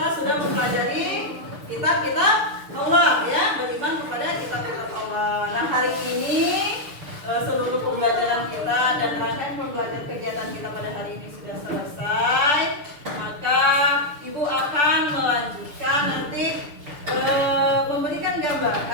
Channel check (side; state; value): left; late; 6.8 ms